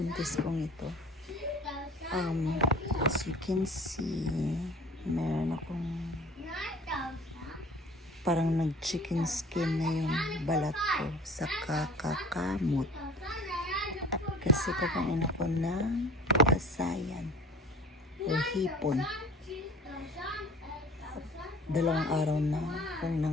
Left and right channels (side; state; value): both; normal; correlation 0.44